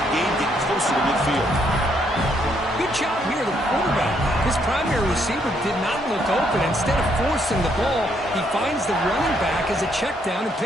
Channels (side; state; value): both; normal; correlation 0.72